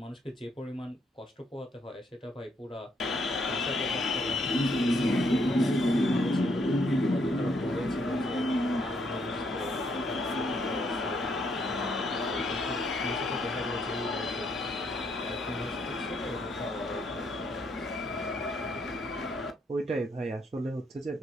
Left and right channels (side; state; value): both; normal; correlation 0.72